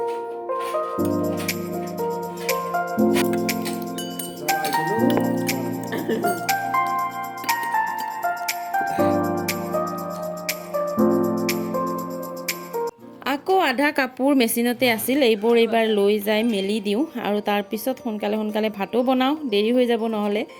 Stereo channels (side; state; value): both; identical; correlation 1.00